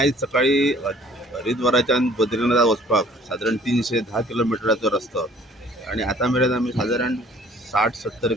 सकाळी हरिद्वाराच्यान बद्रीनाथ वचपाक साधारण 310 किलोमिटराचो रस्तो आणि आता मेरेन आमी साधारण 60-70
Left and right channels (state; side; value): normal; both; correlation 0.54